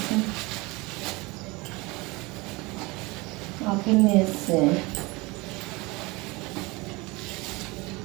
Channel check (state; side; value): quieter; left; 24.2 dB